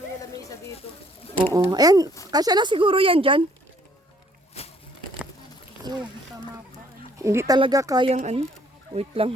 yung lamesa dito. Oo. Ayan, kasya na siguro yan dyan. Tama pa. Hindi talaga kayang Wait lang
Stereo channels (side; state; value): both; normal; correlation 0.62